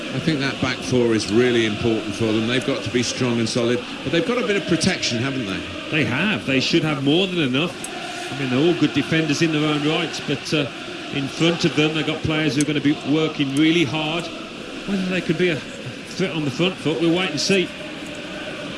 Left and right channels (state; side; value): identical; both; correlation 1.00